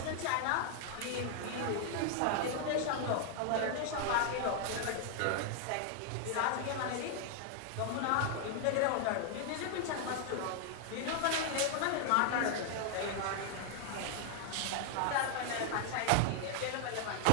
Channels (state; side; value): different; both; correlation 0.00